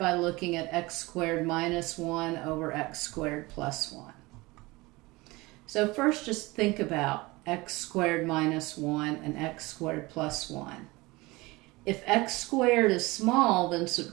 looking at x squared minus 1 over x squared plus 1. So first just think about x squared minus 1 and x squared plus 1. If x squared is small, then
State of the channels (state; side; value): quieter; left; 22.4 dB